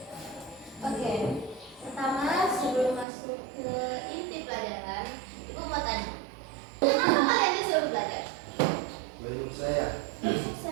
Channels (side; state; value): left; drops out; at 3.1 s